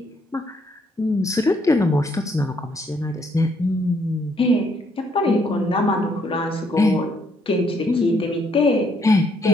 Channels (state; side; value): normal; both; correlation 0.70